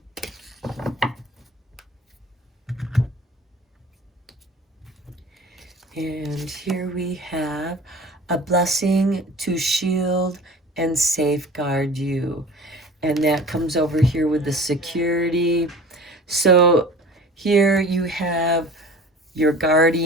And here we have a blessing to shield and safeguard you. And that comes over here with the security. So here you have your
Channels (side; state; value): both; normal; correlation 0.41